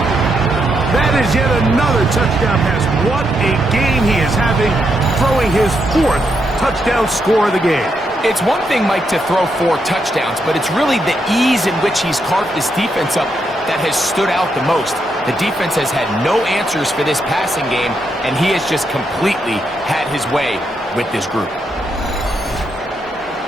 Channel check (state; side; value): normal; both; correlation 0.80